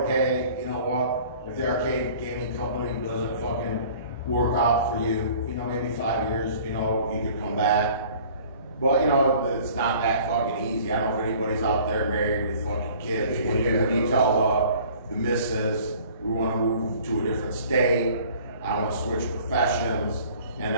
hey, you know what? If the arcade gaming company doesn't fucking work out for you, you know, maybe 5 years, you know, you could come back. But, you know, it's not that fucking easy. I don't know if anybody's out there married with fucking kids. When you tell the missus, we want to move to a different state, I want to switch professions, and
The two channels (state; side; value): inverted; both; correlation -0.50